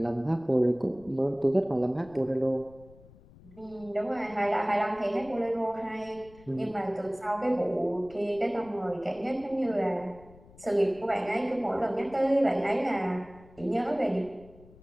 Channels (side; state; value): left; noise; rumble, 23 dB below the sound